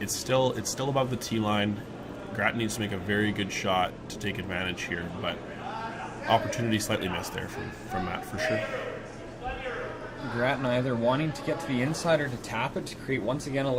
still above the tee line. Grattan needs to make a very good shot to take advantage here, but opportunity slightly missed there from Matt for sure. Grattan either wanting to get to the inside or to tap it to create once again a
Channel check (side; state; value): both; identical; correlation 1.00